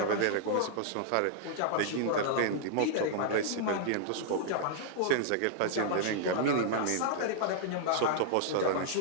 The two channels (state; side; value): different; both; correlation -0.01